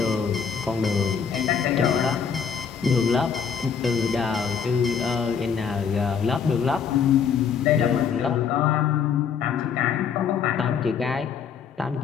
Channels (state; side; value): quieter; right; 6.9 dB